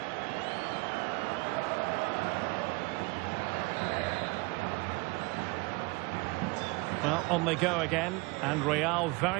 Well, on they go again, and Real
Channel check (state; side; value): quieter; left; 25.7 dB